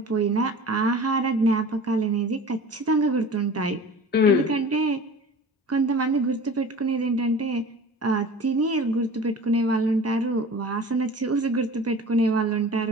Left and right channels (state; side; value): normal; both; correlation 0.40